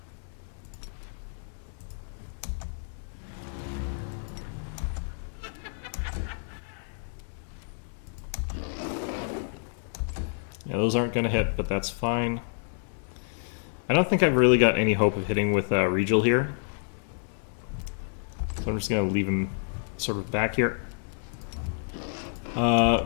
Yeah, those aren't going to hit, but that's fine. I don't think I've really got any hope of hitting with Regal here. So I'm just going to leave him sort of back here.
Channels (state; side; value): silent; right; digital silence